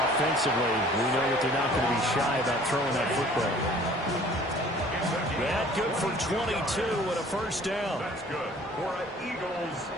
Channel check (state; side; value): normal; both; correlation 0.51